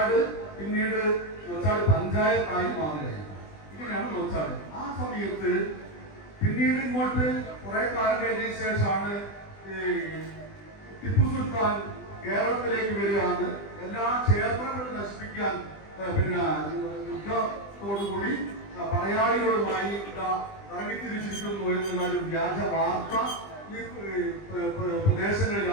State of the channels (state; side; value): late; right; 20 ms